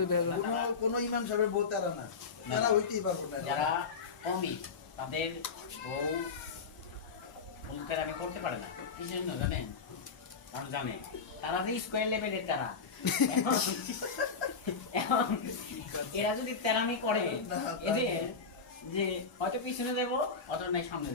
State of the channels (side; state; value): right; quieter; 5.1 dB